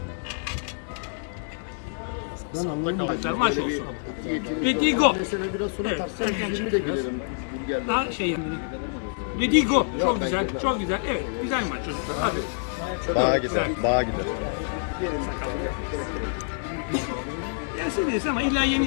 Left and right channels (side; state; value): right; silent; digital silence